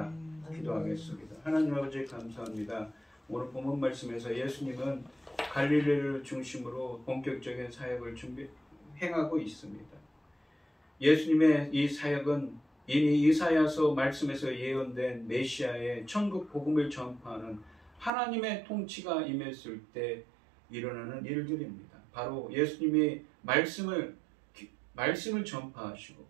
기도하겠습니다. 하나님 아버지 감사합니다. 오늘 본문 말씀에서 예수님은 갈릴리를 중심으로 본격적인 사역을 행하고 있습니다. 예수님의 이 사역은 이미 이사야서 말씀에서 예언된 메시아의 천국 복음을 전파하는 하나님의 통치가 임했을 때 일어나는 일들입니다. 바로 예수님이 말씀을 전파하시고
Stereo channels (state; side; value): drops out; left; at 18.1 s